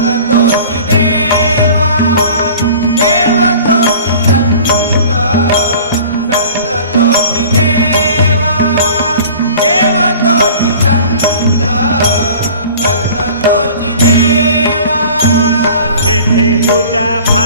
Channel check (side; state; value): both; inverted; correlation -0.44